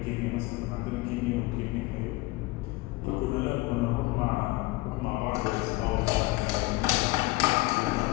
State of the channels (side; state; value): right; quieter; 21.2 dB